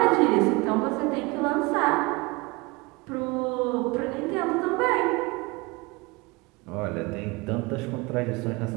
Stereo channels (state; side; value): quieter; left; 25.3 dB